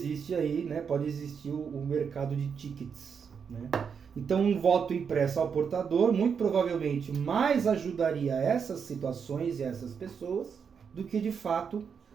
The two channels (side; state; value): left; quieter; 6.6 dB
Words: aí, né? Pode existir o mercado de tickets, né? Então, um voto impresso ao portador, muito provavelmente, mais ajudaria essas situações e essas pessoas do que, de fato,